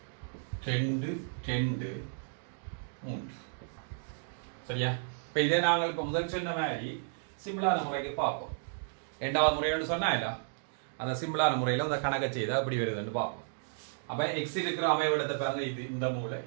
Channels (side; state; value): left; silent; digital silence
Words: 2 2 3. சரியா? இப்போ இதே நாங்கள் இப்போ முதல் சொன்ன மாதிரி சிம்பிளான முறைக்கு பார்ப்போம். ரெண்டாவது முறைன்னு சொன்னால அந்த சிம்பிளான முறையில் அந்த கணக்கை செய்தால் அப்படி வருதுன்னு பார்ப்போம். அப்போ எக்ஸ் இருக்கிற அமைவிடத்தை பாருங்க, இது இந்த மூலை